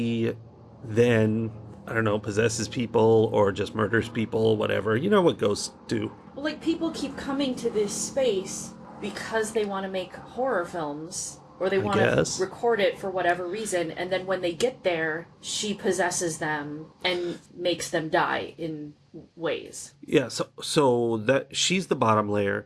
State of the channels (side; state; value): both; identical; correlation 1.00